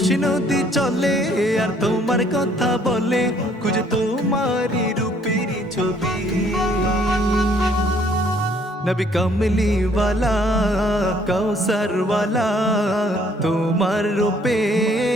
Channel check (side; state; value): both; normal; correlation 0.63